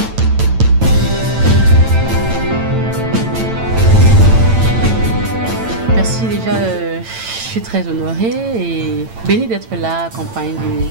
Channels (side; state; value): left; late; 8.9 ms